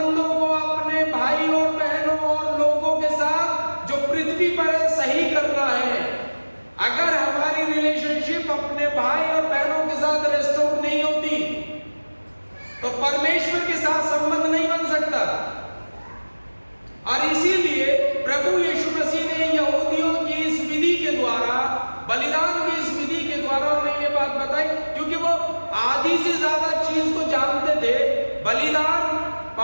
को अपने भाई और बहनों और लोगों के साथ जो पृथ्वी पर है सही करना है। अगर हमारी रिलेशनशिप अपने भाई और बहनों के साथ रेस्टोर नहीं होती तो परमेश्वर के साथ संबंध नहीं बन सकता। और इसीलिए प्रभु यीशु मसीह ने यहूदियों की इस विधि के द्वारा, बलिदान की इस विधि के द्वारा उन्हें ये बात बताई, क्योंकि वो आधी से ज्यादा चीज को जानते थे। बलिदान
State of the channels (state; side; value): inverted; both; correlation -1.00